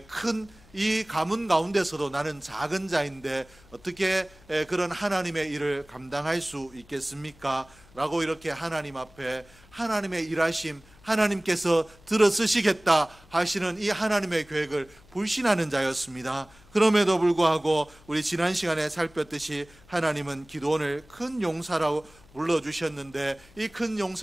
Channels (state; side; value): noise; left; hum, 26 dB below the sound